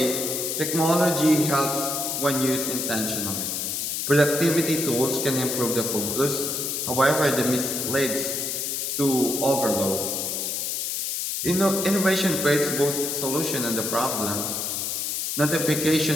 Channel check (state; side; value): noise; left; hiss, 2 dB below the sound